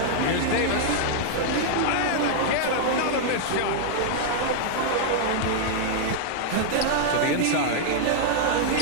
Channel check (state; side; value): different; both; correlation -0.01